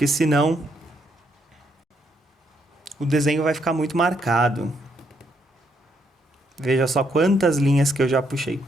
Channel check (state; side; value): normal; both; correlation 0.75